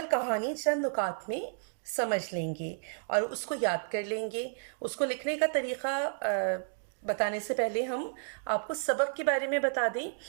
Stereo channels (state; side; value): silent; left; digital silence